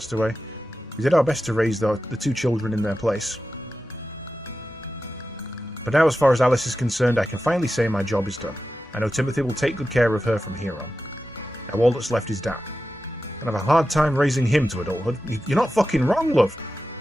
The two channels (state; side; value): normal; both; correlation 0.92